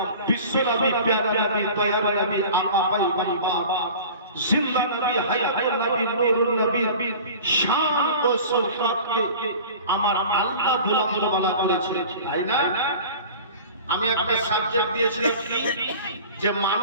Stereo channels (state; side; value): inverted; both; correlation -0.40